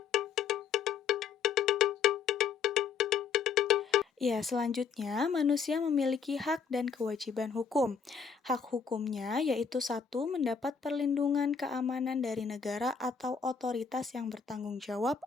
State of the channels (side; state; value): right; quieter; 6.2 dB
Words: Ya, selanjutnya manusia memiliki hak dan kewajiban hukum. Hak hukumnya yaitu satu, mendapat perlindungan keamanan dari negara atau otoritas yang bertanggung jawab